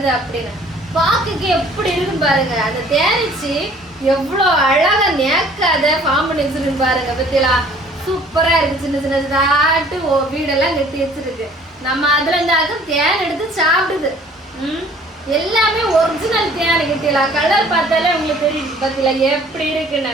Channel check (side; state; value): both; normal; correlation 0.54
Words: அப்படின்னு. பாக்குக்கு எப்படி இருக்கும் பாருங்க. அந்த தேனிச்சு எவ்வளவு அழகா நேக்காத ஃபார்ம் பண்ணி வச்சிருக்கு பாருங்க. பத்தியா சூப்பரா இருக்கு. சின்ன சின்ன தாட்டு வீடெல்லாம் கட்டி வச்சிருக்கு. நம்ம அதுல இருந்தாலும் தேன் எடுத்து சாப்பிடுது. எல்லாமே ஒரிஜினல் தேன் கிட்டல. கலர் பார்த்தாலே உங்களுக்கு தெரியும் பத்தில எப்படி